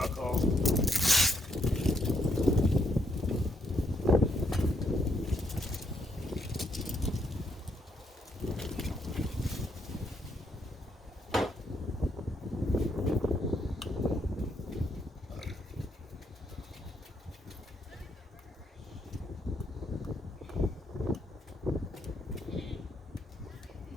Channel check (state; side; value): normal; both; correlation 0.74